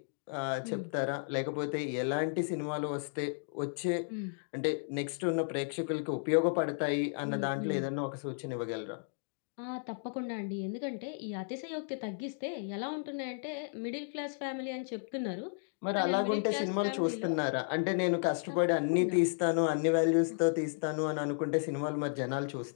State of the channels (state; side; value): silent; right; digital silence